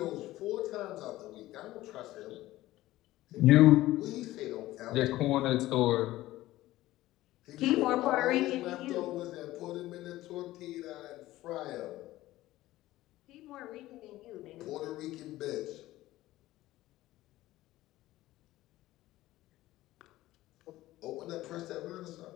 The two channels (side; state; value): right; quieter; 16.3 dB